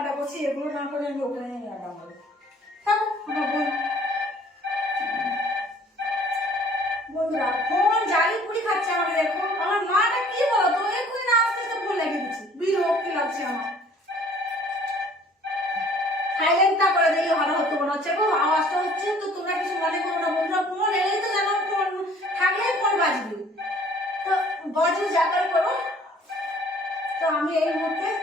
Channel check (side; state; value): both; normal; correlation 0.54